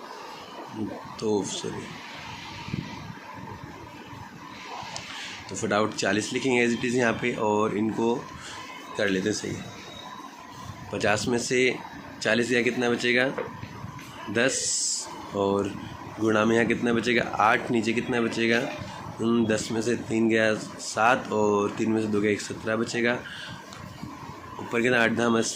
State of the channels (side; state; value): both; identical; correlation 1.00